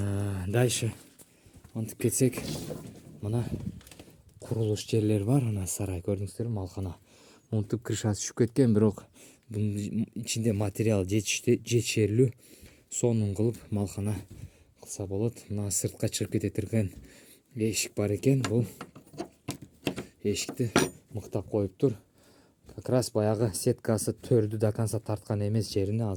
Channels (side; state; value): both; identical; correlation 1.00